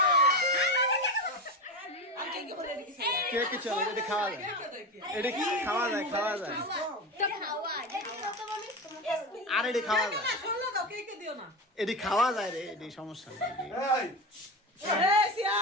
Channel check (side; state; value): both; normal; correlation 0.21